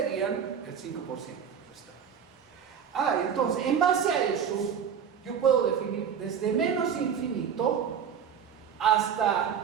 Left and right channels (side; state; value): left; quieter; 7.6 dB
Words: el 5% restante. Entonces, en base a eso, yo puedo definir desde menos infinito